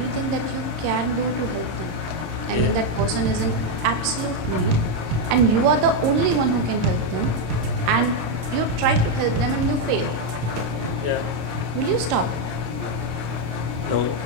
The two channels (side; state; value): left; late; 26 ms